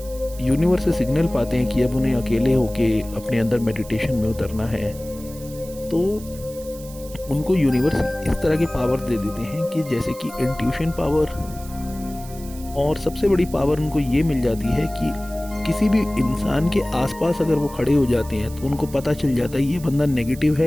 यूनिवर्स से सिग्नल पाते हैं कि अब उन्हें अकेले होके अपने अंदर मेडिटेशन में उतरना है, तो उनको यूनिवर्स इस तरह के पावर दे देते हैं कि जैसे कि इंट्यूशन पावर। और सबसे बड़ी पावर उनको ये मिल जाती है कि किसी भी इंसान के आसपास अगर वो खड़े हो जाते हैं तो उनको पता चल जाता है ये बंदा नेगेटिव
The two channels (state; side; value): noise; right; hiss, 18 dB below the sound